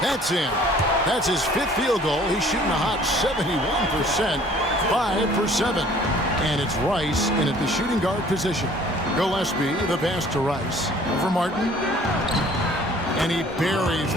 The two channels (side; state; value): both; normal; correlation 0.54